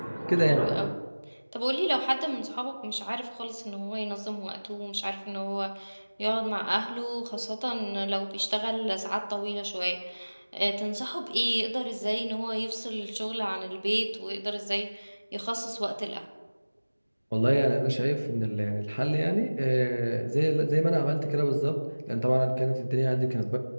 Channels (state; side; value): inverted; both; correlation -1.00